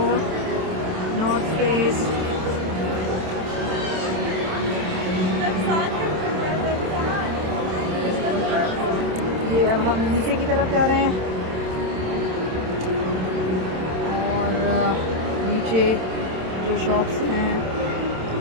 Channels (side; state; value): left; late; 27 ms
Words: नॉर्थ फेस, ये अब हम नीचे की तरफ जा रहे हैं। और नीचे जो शॉप्स हैं